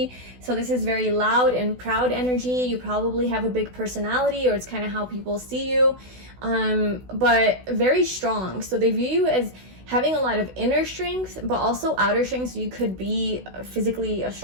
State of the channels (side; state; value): left; late; 16 ms